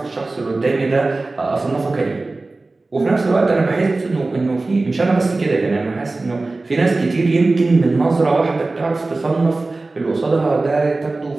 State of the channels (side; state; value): left; quieter; 3.3 dB